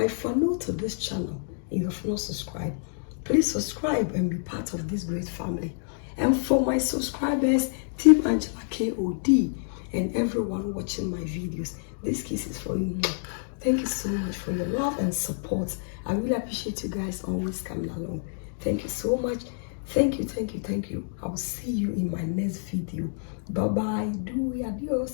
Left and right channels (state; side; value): silent; right; digital silence